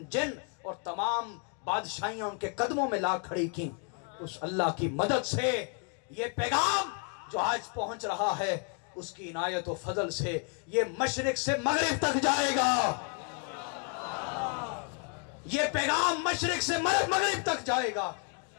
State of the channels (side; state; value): right; quieter; 37.9 dB